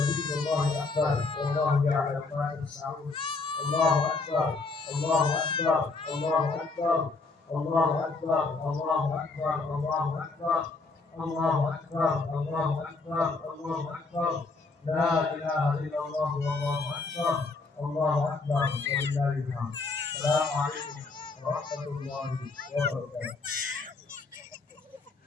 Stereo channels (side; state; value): right; quieter; 3.8 dB